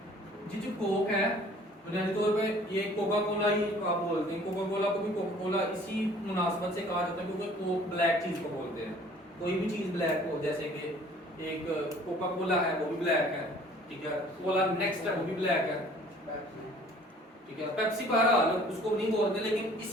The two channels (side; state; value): both; normal; correlation 0.53